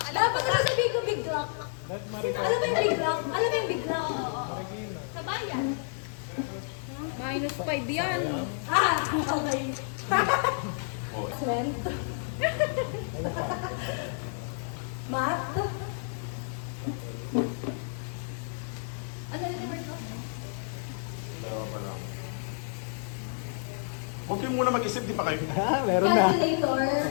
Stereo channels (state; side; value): silent; right; digital silence